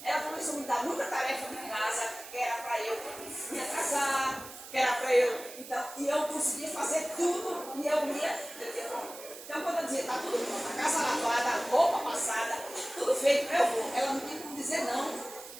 ela começou a me dar muita tarefa de casa, que era para eu me atrasar, que era para eu. Então, e eu conseguia fazer tudo, e eu ia. Então, quando eu dizia, está tudo pronto, a casa lavada, a roupa passada, tudo feito, eu vou. Ela não tinha como dizer não,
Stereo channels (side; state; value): right; noise; hiss, 14 dB below the sound